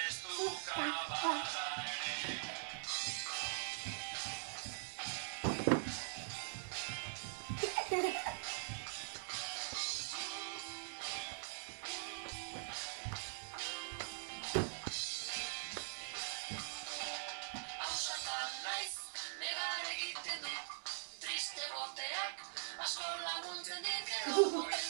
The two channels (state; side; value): silent; left; digital silence